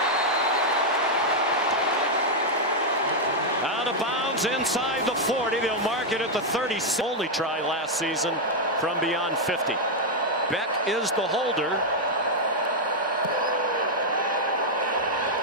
Out of bounds inside the 40. They'll mark it at the 30. Only try last season from beyond 50. Beck is the holder.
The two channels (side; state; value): both; normal; correlation -0.01